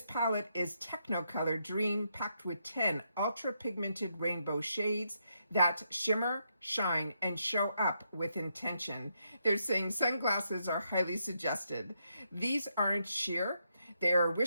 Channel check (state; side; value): inverted; both; correlation -0.79